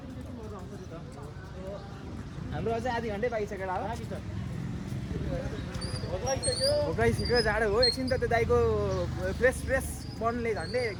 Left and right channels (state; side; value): identical; both; correlation 1.00